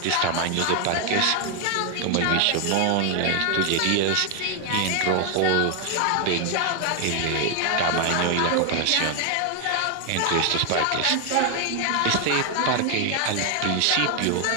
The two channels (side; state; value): both; different; correlation 0.00